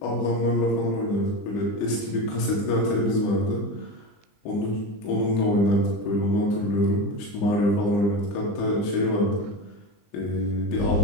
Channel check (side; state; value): right; late; 20 ms